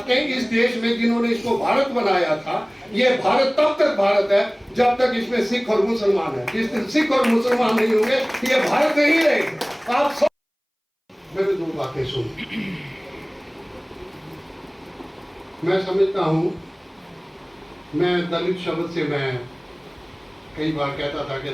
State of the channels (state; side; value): identical; both; correlation 1.00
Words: इस देश में जिन्होंने इसको भारत बनाया था, ये भारत तब तक भारत है जब तक इसमें सिख और मुसलमान है। जिस दिन सिख और मुसलमान नहीं होंगे ये भारत नहीं रहेगा। आप सब मेरे दो बातें सुन। मैं समझता हूं, मैं दलित शब्द से मैं कई बार कहता था कि